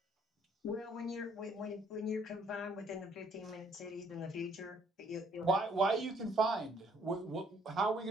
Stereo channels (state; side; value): normal; both; correlation 0.64